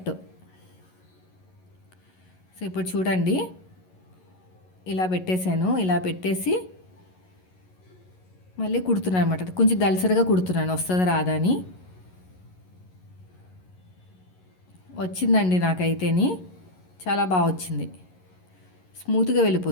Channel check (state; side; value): late; right; 11 ms